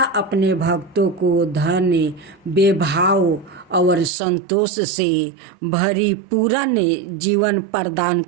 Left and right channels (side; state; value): left; drops out; at 4.1 s